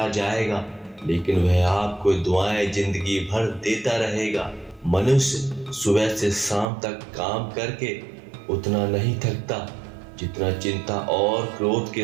जाएगा, लेकिन वह आपको दुआएं जिंदगी भर देता रहेगा। मनुष्य सुबह से शाम तक काम करके उतना नहीं थकता जितना चिंता और क्रोध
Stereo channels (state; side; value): drops out; left; at 6.7 s